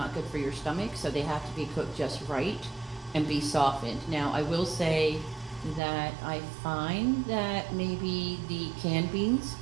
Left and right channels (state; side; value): drops out; left; at 5.8 s